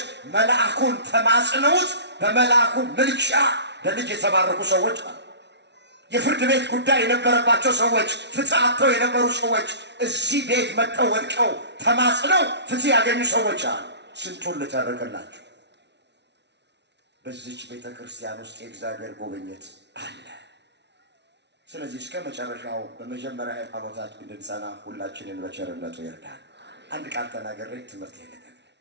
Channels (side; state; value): left; late; 0.50 ms